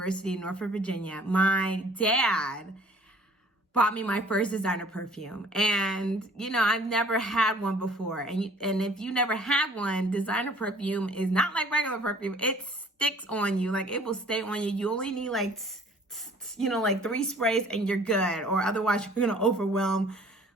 in Norfolk, Virginia. My dad bought me my first designer perfume. And, you know, I've never had one before. And if you never had one, designer perfume is not like regular perfume. It sticks on you. Like, it will stay on you. You only need like 3 sprays and you're good, or otherwise you're going to overwhelm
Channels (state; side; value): normal; both; correlation 0.53